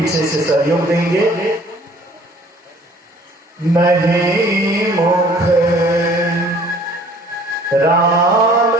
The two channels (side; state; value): both; normal; correlation 0.54